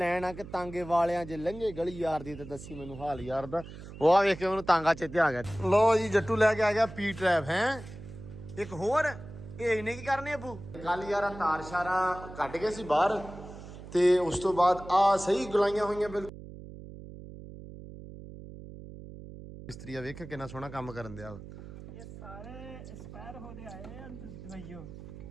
ਆ ਕਿ ਤਾਂਗੇ ਵਾਲਿਆਂ ਜੇ ਲੰਘੇ ਗਲੀ ਯਾਰ ਦੀ ਤੇ ਦੱਸੀ ਮੈਨੂੰ ਹਾਲ ਯਾਰ ਦਾ। ਉਹ ਆ ਵੇਖ ਕੇ ਮੈਨੂੰ ਤਾਂਗਾ ਚੇਤੇ ਆ ਗਿਆ। ਲੋ ਜੀ ਜੱਟੂ ਲੈ ਕੇ ਆ ਗਿਆ ਪੀ ਟਰੈਪ ਹੈ ਇੱਕ ਹੋਰ। ਇਹ ਇਹਨੇ ਕੀ ਕਰਨੇ ਅਬੂ? ਕੱਲ ਯਾਰ ਤਾਰ ਸ਼ਾਰਾਂ ਕੱਢ ਗਏ ਸੀ ਬਾਹਰ ਤੇ ਉਸ ਤੋਂ ਬਾਅਦ ਆ ਸਹੀ ਗੁਲਾਈਆਂ ਹੋਈਆਂ ਬਿਲਕੁਲ। ਮਿਸਤਰੀ ਆ ਵੇਖ ਕਿੰਨਾ ਸੋਹਣਾ ਕੰਮ ਕਰਨ ਦਿਆ। ਇਹ ਸਾਰੇ ਐਕਸਪਾਇਰ ਹੋ ਗਏ ਆਏ ਆ ਦਵਾਈਓ।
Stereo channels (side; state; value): right; noise; hum, 14 dB below the sound